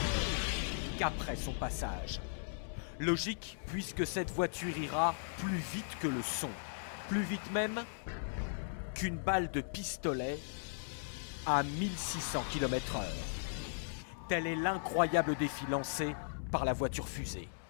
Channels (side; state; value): right; silent; 53 dB below the other